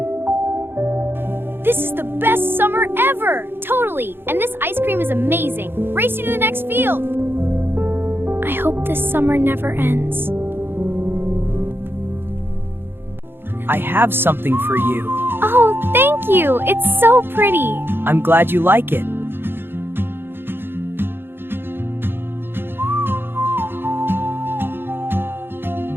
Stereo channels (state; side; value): late; left; 0.10 ms